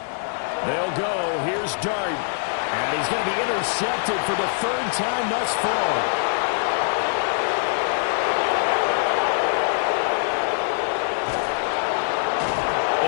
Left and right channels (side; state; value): right; silent; 59 dB below the other